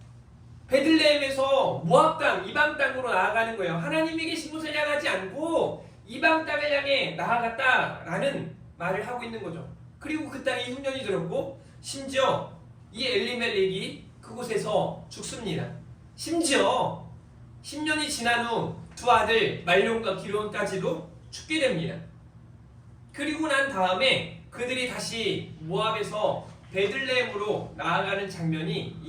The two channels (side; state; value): both; identical; correlation 1.00